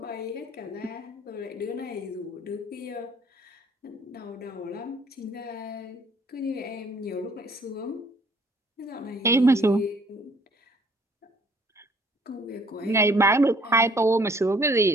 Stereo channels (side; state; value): both; normal; correlation 0.60